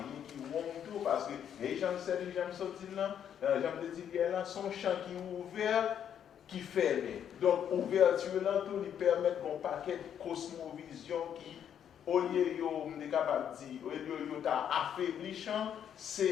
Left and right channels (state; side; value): quieter; right; 9.1 dB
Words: qui ouvre tout, parce que Haitian Studies, j'aime sortir là, j'aime dire là, son champ qui est ouvert, qui ferme. Donc, ouverture là, tout lui permet un paquet de cosmovision qui au lieu de capable dire, au lieu de affaiblissant,